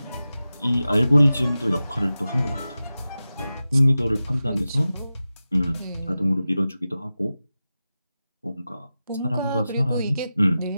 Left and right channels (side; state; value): both; inverted; correlation -0.94